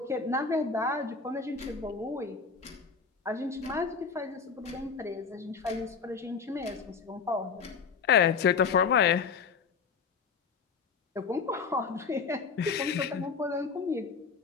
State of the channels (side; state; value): right; quieter; 5.4 dB